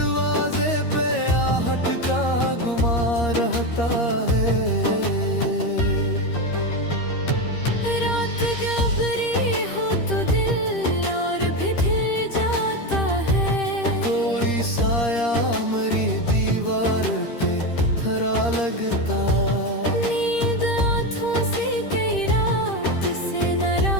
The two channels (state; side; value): late; right; 13 ms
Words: पे आहट का गुमा रहता है। रात गहरी हो तो दिल और भी ढल जाता है, कोई साया मरी दीवार पे खरा लगता। नींद आँखों से कई रात से